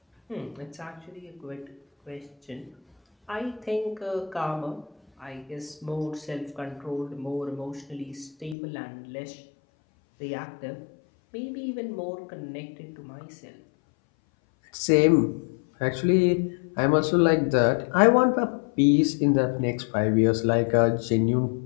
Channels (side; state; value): right; drops out; at 8.6 s